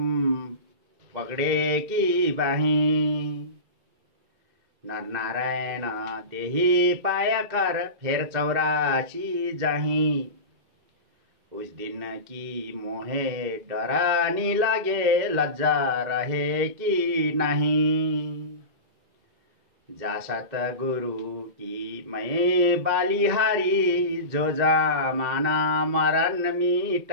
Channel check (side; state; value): left; late; 2.1 ms